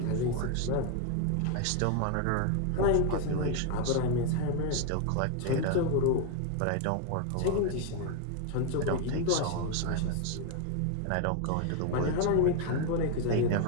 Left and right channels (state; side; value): different; both; correlation 0.01